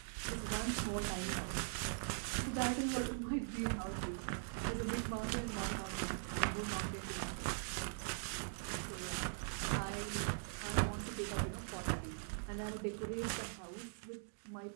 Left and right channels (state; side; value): silent; left; digital silence